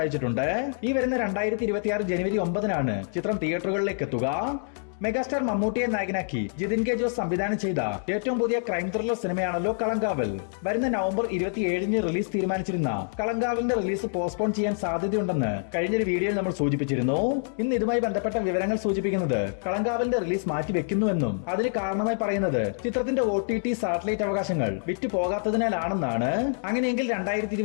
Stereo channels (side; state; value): right; silent; digital silence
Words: ഈ വരുന്ന 2026 ജനുവരി 9 ചിത്രം തിയേറ്ററുകളിൽ എത്തുക. മെഗാസ്റ്റാർ മമ്മൂട്ടിയെ നായകനാക്കി ജിതിൻ കെ ജോസ് സംവിധാനം ചെയ്ത ഏറ്റവും പുതിയ ക്രൈം ത്രില്ലർ സിനിമയാണല്ലോ കളങ്കാവൽ. വരുന്ന നവംബർ 27 റിലീസ് തീരുമാനിച്ചിരുന്ന കളങ്കാവലിന്റെ റിലീസ് പോസ്റ്റ്പോൺ ചെയ്യാൻ സാധ്യതയുണ്ടെന്ന് കഴിഞ്ഞൊരു വീഡിയോയിൽ നമ്മൾ സൂചിപ്പിച്ചിരുന്നു. ഇന്ന് ഇതുമായി ബന്ധപ്പെട്ട വിവരങ്ങൾ സൂചിപ്പിക്കുന്നത് കളങ്കാവലിന്റെ റിലീസ് മാറ്റിവെക്കുന്നുവെന്നും അതിന് കാരണമായി പറയുന്നത് ചിത്രത്തിന്റെ OTT സാറ്റലൈറ്റ് അവകാശങ്ങൾ വിറ്റു പോകാത്തതിനാലാണെന്നാണ്. അങ്ങനെയെങ്കിൽ